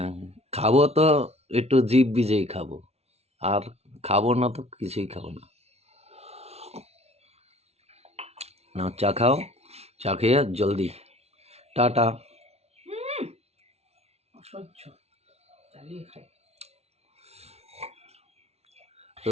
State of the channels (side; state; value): left; late; 0.31 ms